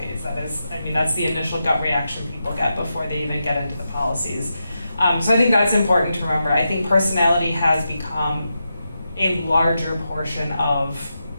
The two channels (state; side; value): inverted; both; correlation -0.88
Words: That's the initial gut reaction people get before they even get into the policies. So I think that's important to remember. I think personality has become a larger portion of